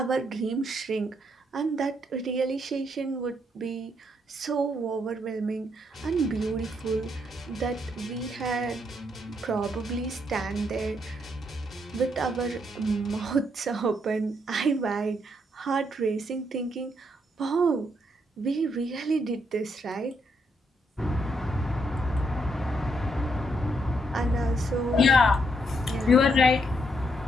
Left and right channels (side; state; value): both; normal; correlation 0.75